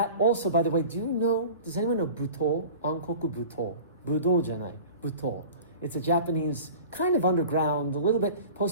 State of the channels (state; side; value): inverted; both; correlation -0.40